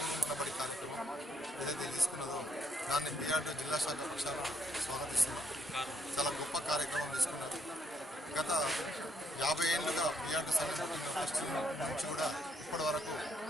మన బడి కార్యక్రమం ఏదైతే తీసుకున్నదో దాన్ని పిఆర్టీ జిల్లా శాఖ పక్షాన స్వాగతిస్తున్నాం. చాలా గొప్ప కార్యక్రమం తీసుకున్నారు. గత 50 ఏళ్ళుగా పిఆర్టీ సంఘటన నుంచి కూడా ఇప్పటి వరకు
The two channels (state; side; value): normal; both; correlation 0.73